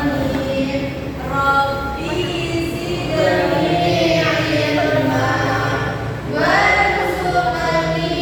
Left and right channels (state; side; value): identical; both; correlation 1.00